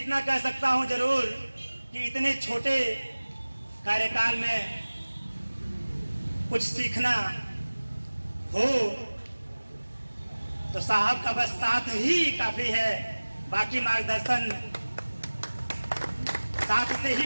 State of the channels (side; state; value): both; inverted; correlation -1.00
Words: कह सकता हूँ जरूर कि इतने छोटे कार्यकाल में कुछ सीखना हो तो साहब का बस साथ ही काफी है। बाकी मार्गदर्शन साथ से ही